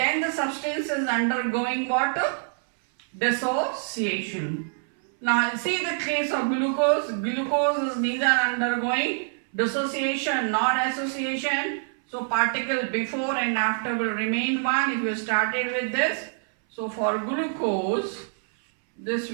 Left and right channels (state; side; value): silent; left; 61 dB below the other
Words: the substance is undergoing what? Dissociation. Now see the case of glucose. Glucose is neither undergoing dissociation nor association. So particle before and after will remain 1 if you started with this. So for glucose, this